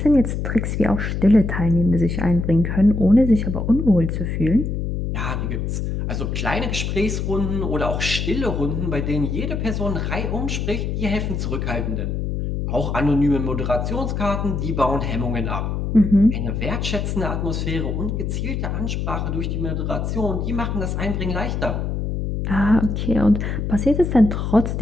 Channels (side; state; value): left; noise; hum, 2 dB below the sound